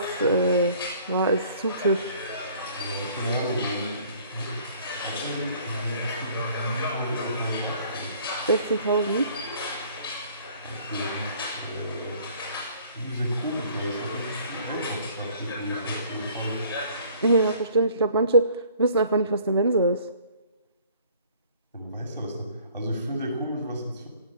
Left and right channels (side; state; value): both; inverted; correlation -0.55